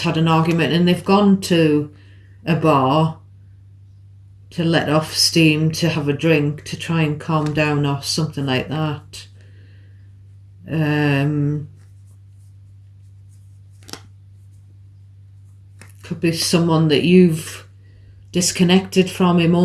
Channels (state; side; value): identical; both; correlation 1.00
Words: an argument and they've gone to a bar let off steam, to have a drink, to try and calm down or something like that. Could be someone that you've disconnected from